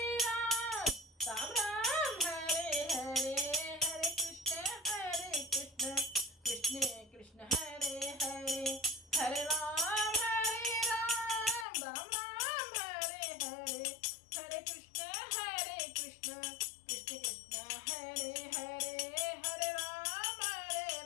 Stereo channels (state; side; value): drops out; right; at 11.7 s